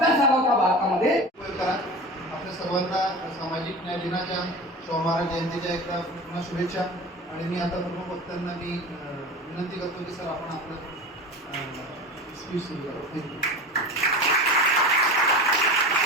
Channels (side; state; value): both; normal; correlation 0.32